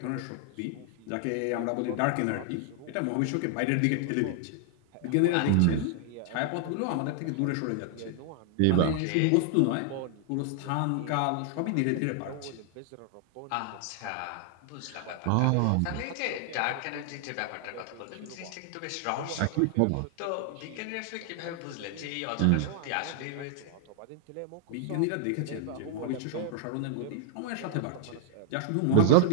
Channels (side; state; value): both; different; correlation 0.00